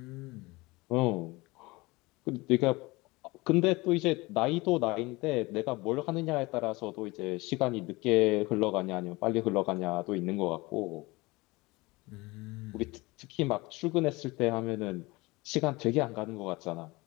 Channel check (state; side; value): quieter; right; 22.8 dB